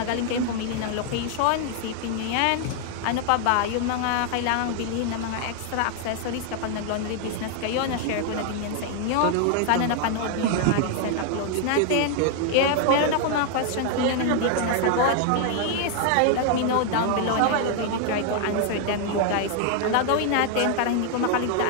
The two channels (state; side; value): different; both; correlation 0.00